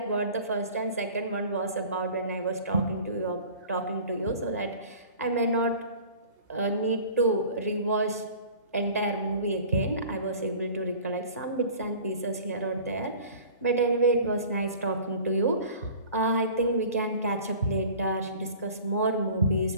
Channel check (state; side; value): inverted; both; correlation -0.44